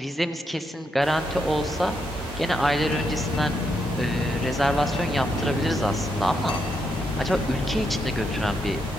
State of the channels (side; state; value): both; normal; correlation 0.80